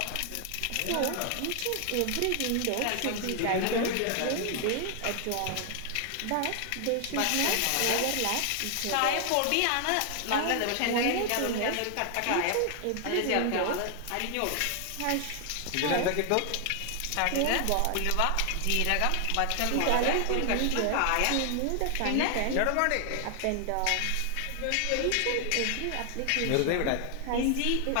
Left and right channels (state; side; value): different; both; correlation 0.00